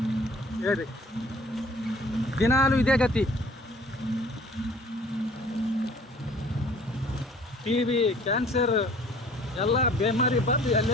ಹೇಳಿ, ದಿನಾಲೂ ಇದೇ ಗತಿ. TB, ಕ್ಯಾನ್ಸರ್ ಎಲ್ಲ ಬೇಮಾರಿ ಬಂದು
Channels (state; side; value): normal; both; correlation 0.52